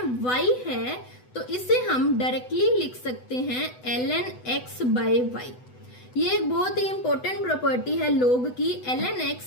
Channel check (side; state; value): right; late; 8.0 ms